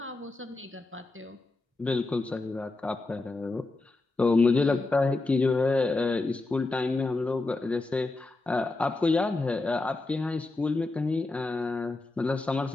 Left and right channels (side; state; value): right; quieter; 3.2 dB